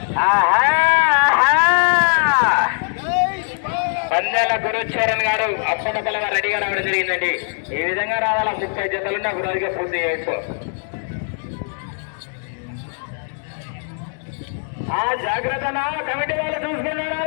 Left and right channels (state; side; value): silent; right; 58 dB below the other